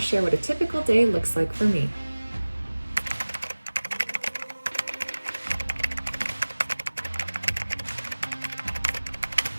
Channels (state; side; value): inverted; both; correlation -1.00